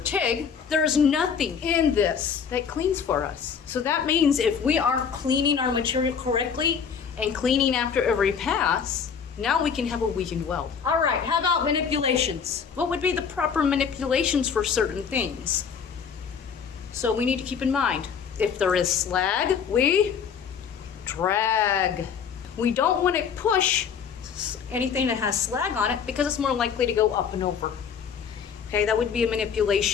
there's nothing in this that cleans for us. So that means if we aren't cleaning our material correctly and cleaning after every pass, now we can have a weakened weld. All right, how about manipulations? What would be the proper manipulations for certain things? So we need to keep in mind, if there is slag, we drag. We don't want to push anything that has slag on it because it's more likely to go up and over. Okay, that would be a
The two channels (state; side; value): quieter; right; 6.8 dB